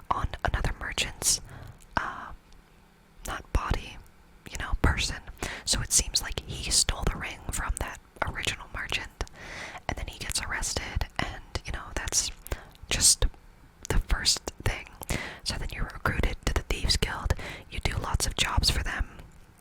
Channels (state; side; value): identical; both; correlation 1.00